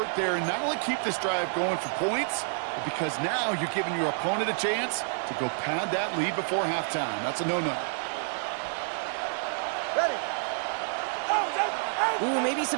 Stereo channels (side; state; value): left; silent; 56 dB below the other